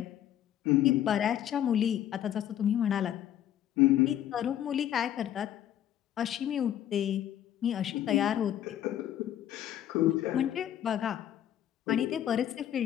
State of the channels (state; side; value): quieter; right; 11.2 dB